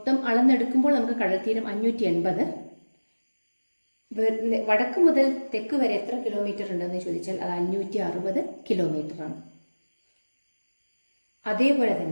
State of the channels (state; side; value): inverted; both; correlation -1.00